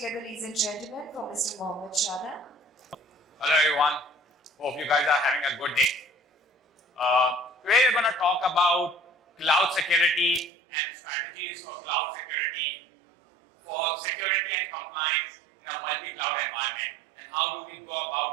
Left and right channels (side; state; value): left; drops out; at 10.5 s